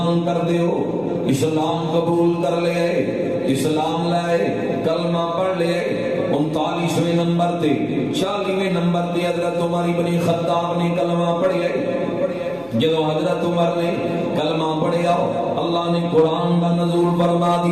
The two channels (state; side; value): noise; left; hum, 26 dB below the sound